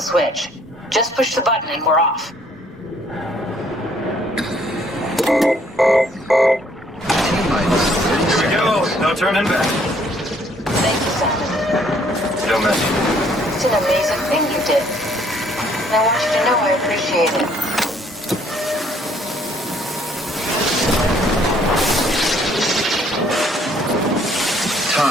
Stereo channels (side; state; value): both; normal; correlation 0.63